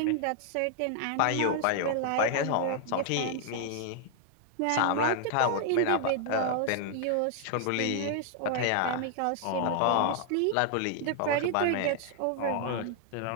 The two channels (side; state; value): both; different; correlation -0.01